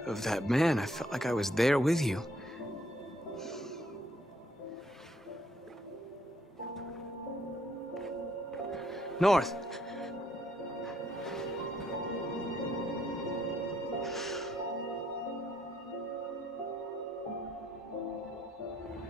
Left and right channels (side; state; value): both; normal; correlation 0.69